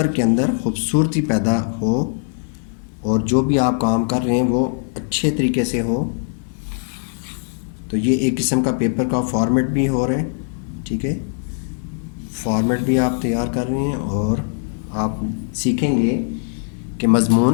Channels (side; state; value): right; silent; digital silence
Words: के अंदर ख़ूबसूरती पैदा हो और जो भी आप काम कर रहे हैं वो अच्छे तरीके से हो। तो ये एक किस्म का पेपर का फॉर्मेट भी हो रहा है, ठीक है। फॉर्मेट भी आप तैयार कर रहे हैं और आप सीखेंगे कि